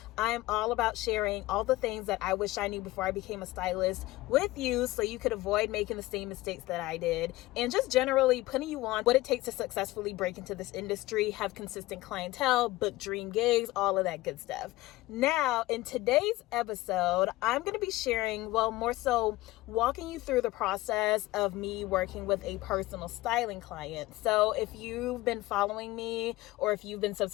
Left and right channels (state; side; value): quieter; right; 18.7 dB